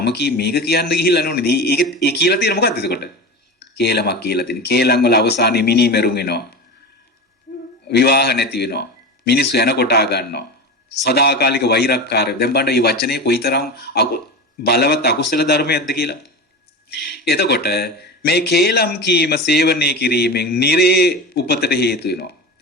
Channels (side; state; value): both; normal; correlation 0.26